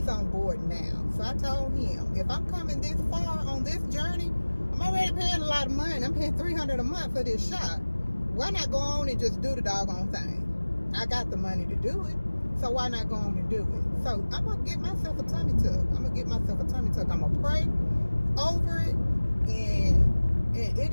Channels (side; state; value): both; inverted; correlation -1.00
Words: on board now. So I told him, if I'm coming this far on this journey, I'm already paying a lot of money. I'm paying $300 a month for this shot. Why not go on and just do the doggone thing? I got the money to do it, so why not go on and do it? So I'm gonna get myself a tummy tuck. I'm gonna pray over it, and it